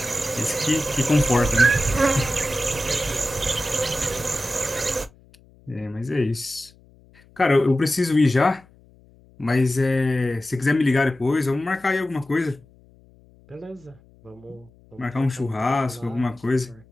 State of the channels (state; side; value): noise; left; hum, 28 dB below the sound